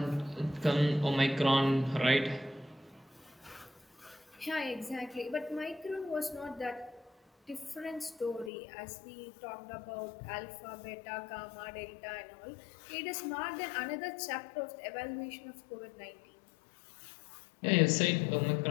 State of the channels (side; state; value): right; drops out; at 8.5 s